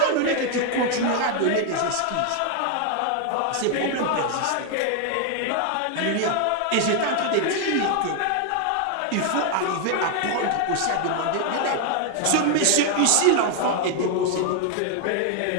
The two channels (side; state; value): both; different; correlation 0.00